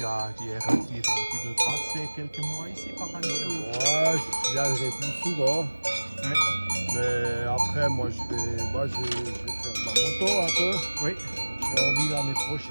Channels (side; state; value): both; inverted; correlation -1.00